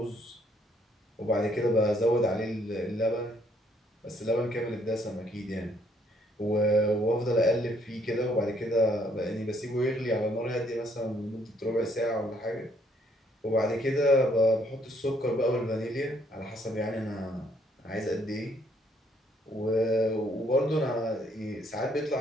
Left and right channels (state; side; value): normal; both; correlation 0.68